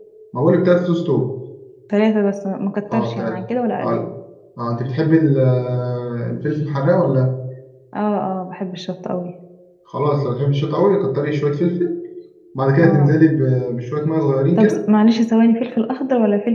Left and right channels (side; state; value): both; identical; correlation 1.00